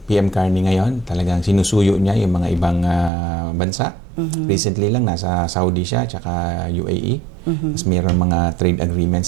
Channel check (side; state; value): left; drops out; at 3.1 s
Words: PM Carney ngayon, talagang sinusuyo niya yung mga ibang bansa. Recently lang nasa Saudi siya, tsaka UAE. Tapos mayroon mga trade